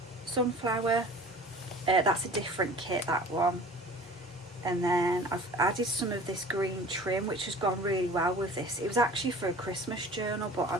sunflower, that's a different kit, that one. And then I've added some of this green trim, which has gone really well with this. It was actually for a Christmas journal,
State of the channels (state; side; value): normal; both; correlation 0.43